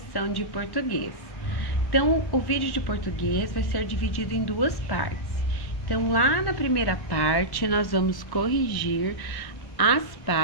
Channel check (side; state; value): right; late; 1.1 ms